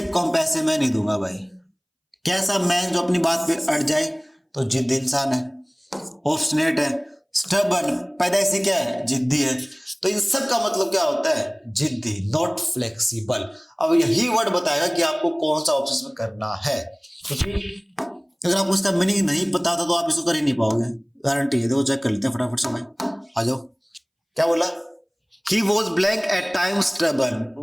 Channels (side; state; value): both; identical; correlation 1.00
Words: कम पैसे मैं नहीं दूंगा भाई। कैसा मैन जो अपनी बात पे अड़ जाए तो जिद्दी इंसान है। ऑब्स्टिनेट है, स्टबर्न पैदाइशी क्या है, जिद्दी है। तो इन सब का मतलब क्या होता है, जिद्दी, नॉट फ्लेक्सिबल। अब यही वर्ड बताएगा कि आपको कौन सा ऑप्शन में करना है, क्योंकि अगर आपको इसका मीनिंग नहीं पता था तो आप इसको कर ही नहीं पाओगे, गारंटी है। देखो चेक कर लेते हैं फटाफट से भाई, आ जाओ। क्या बोला, he was blank at time stubborn,